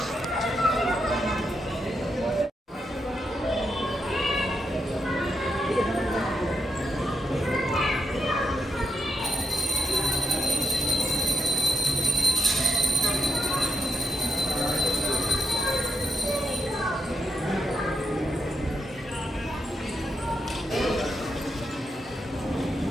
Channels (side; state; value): both; normal; correlation 0.84